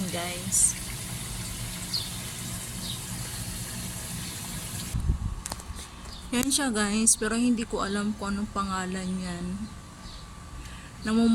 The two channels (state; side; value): identical; both; correlation 1.00